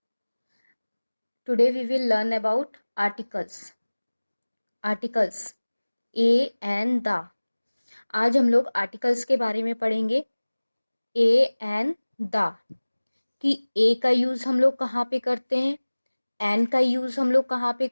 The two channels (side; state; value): both; inverted; correlation -1.00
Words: Today we will learn about articles. Articles a and the. आज हम लोग articles के बारे में पढ़ेंगे. ए एंड द कि ए का यूज हम लोग कहाँ पे करते हैं, एन का यूज हम लोग कहाँ पे